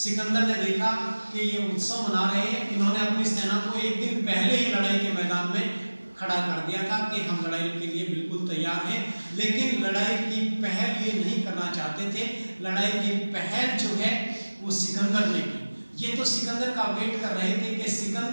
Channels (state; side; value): inverted; both; correlation -1.00